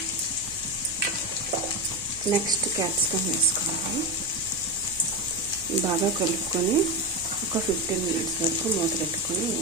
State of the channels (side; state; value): right; noise; hum, 20 dB below the sound